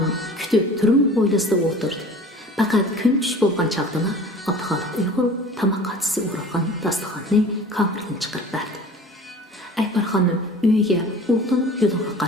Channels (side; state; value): both; normal; correlation 0.43